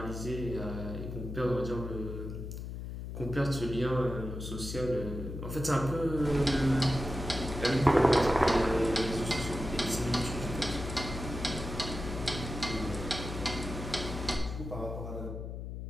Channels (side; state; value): left; noise; hum, 7 dB below the sound